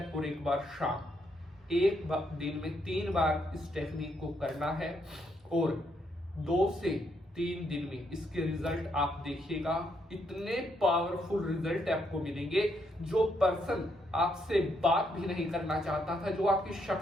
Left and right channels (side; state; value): both; normal; correlation 0.75